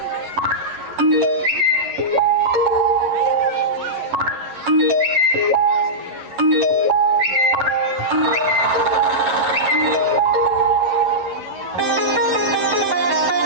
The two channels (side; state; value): left; late; 11 ms